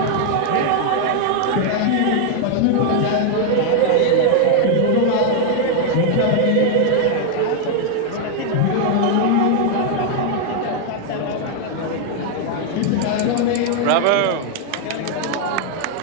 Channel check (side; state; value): both; different; correlation 0.00